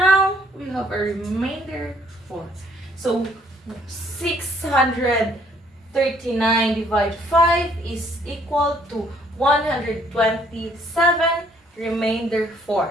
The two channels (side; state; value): both; normal; correlation 0.64